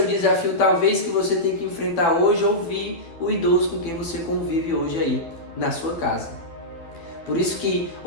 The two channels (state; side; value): late; right; 12 ms